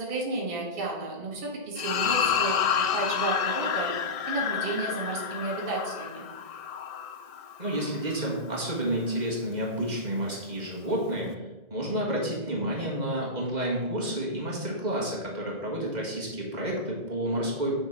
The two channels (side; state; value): left; late; 1.6 ms